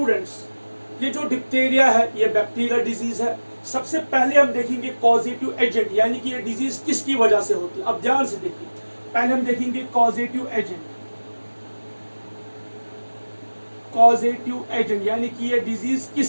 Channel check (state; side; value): inverted; both; correlation -1.00